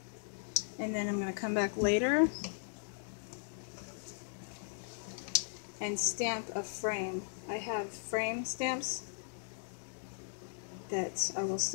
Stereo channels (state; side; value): silent; right; digital silence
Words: And then I'm going to come back later and stamp a frame. I have frame stamps that I will